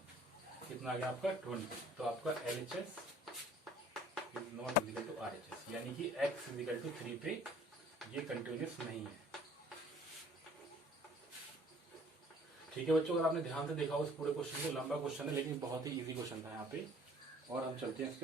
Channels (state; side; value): normal; both; correlation 0.54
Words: कितना आ गया आपका 20। तो आपका LHS is not is equal to RHS, यानी कि x इजिकल टू 3 पे ये कंटिन्यूस नहीं है। ठीक है बच्चों, अगर आपने ध्यान से देखा उस पूरे क्वेश्चन को, लंबा क्वेश्चन है लेकिन बहुत ही इजी क्वेश्चन था यहाँ पे। और हम चलते हैं,